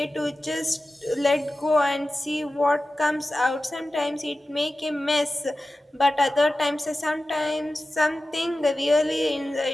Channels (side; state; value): both; normal; correlation 0.94